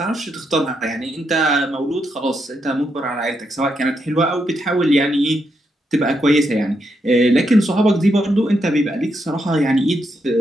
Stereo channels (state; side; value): normal; both; correlation 0.81